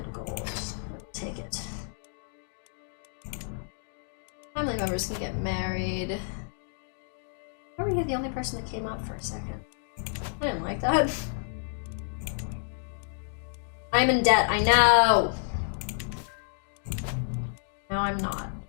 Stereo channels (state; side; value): silent; right; digital silence